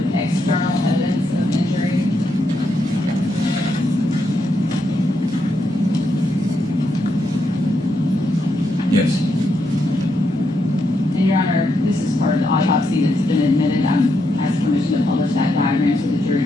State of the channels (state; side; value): normal; both; correlation 0.80